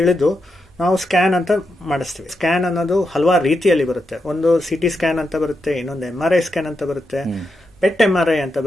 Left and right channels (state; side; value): normal; both; correlation 0.85